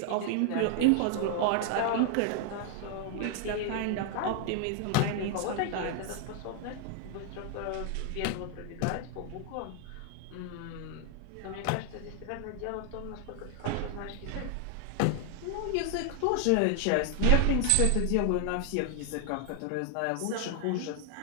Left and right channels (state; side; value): different; both; correlation 0.00